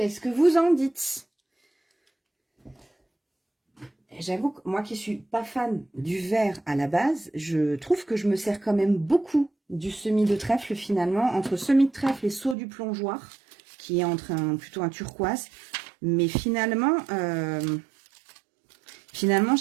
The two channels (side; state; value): left; drops out; at 12.6 s